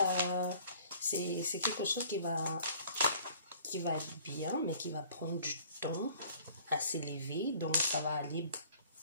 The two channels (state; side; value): inverted; both; correlation -0.53